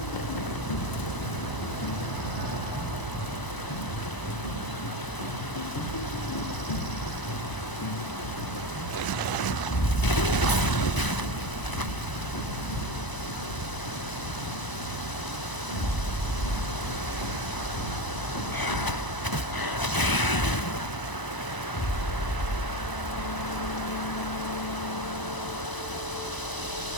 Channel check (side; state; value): right; late; 1.0 ms